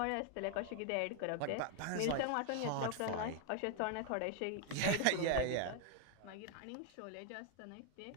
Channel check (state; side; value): different; both; correlation 0.00